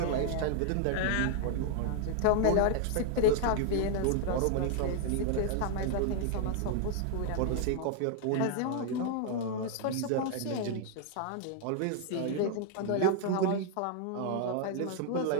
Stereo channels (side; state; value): both; different; correlation 0.00